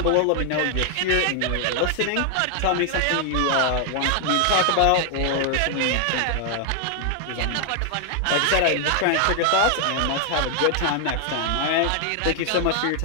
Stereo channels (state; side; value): different; both; correlation 0.00